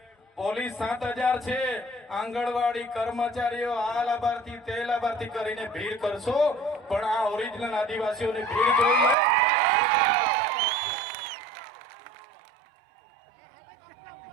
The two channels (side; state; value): left; drops out; at 9.2 s